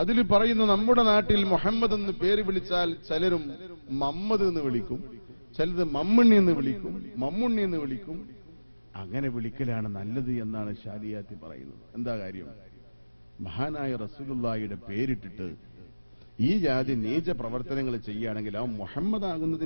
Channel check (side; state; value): both; inverted; correlation -1.00